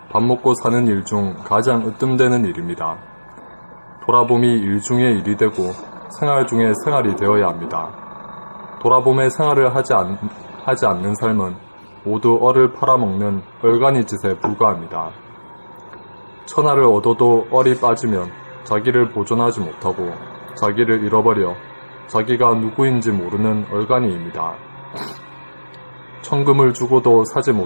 밥 먹고 사는 일 중 가장 으뜸되는 일입니다. 돌아봄이 일 중에 일이 되고 생활 중에 생활이 되어야 합니다. 돌아봄에 생활을 하지 않는 삶은 모두 얼을 팔아먹는 얼간이 짓에 불과합니다. 천하를 얻어도 얼이 빠지면 자기를 보존하지 못하고 자기를 잃어버려 자기가 누구인지 모르는 얼간이입니다. 천금을 주고도 사지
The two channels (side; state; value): both; inverted; correlation -1.00